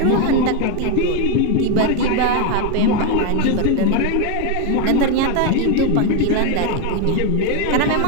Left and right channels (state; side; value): different; both; correlation 0.01